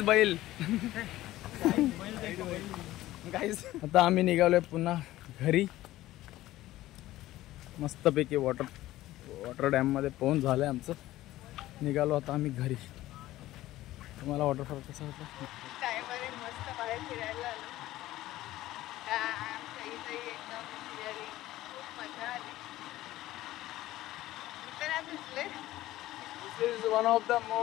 बैल. गाईज आता आम्ही निघालोय पुन्हा घरी. मस्तपैकी वॉटर डॅम मध्ये पोहून झालंय आमचं. निघालो आता आम्ही घरी. तुम्हाला वॉटरफॉल कसा होता. मस्त बाहेर फिरायला आलो. एकदम फिरायला खूप मजा आली. This is one of the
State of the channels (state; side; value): quieter; right; 15.7 dB